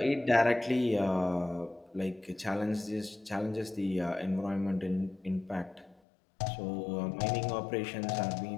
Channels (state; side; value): drops out; right; at 6.0 s